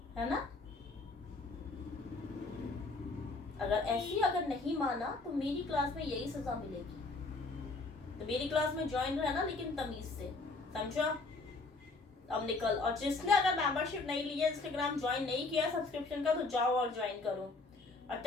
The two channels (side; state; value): right; quieter; 3.5 dB